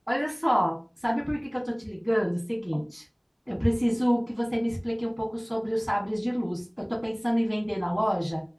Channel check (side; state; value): both; identical; correlation 1.00